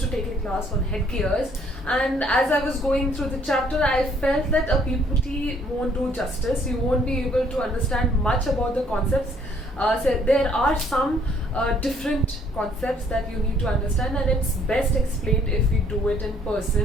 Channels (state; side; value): normal; both; correlation 0.63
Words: to take a class on headgears, and as I was going through the chapter I felt that a PPT won't do justice. You won't be able to understand much about the concepts. So there are some different concepts that you need to understand, and it's best explained if we do it in